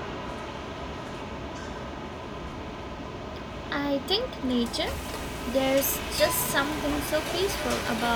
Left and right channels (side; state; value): both; identical; correlation 1.00